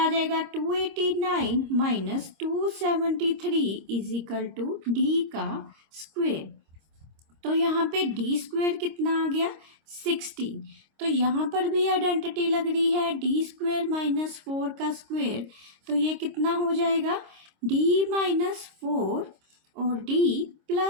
जाएगा 289 minus 273 is equal to d का स्क्वेयर। तो यहाँ पे d स्क्वेयर कितना आ गया 16। तो यहाँ पर भी आइडेंटिटी लग रही है d स्क्वेयर माइनस 4 का स्क्वेयर, तो ये कितना हो जाएगा d माइनस 4 और d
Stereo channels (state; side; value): late; left; 26 ms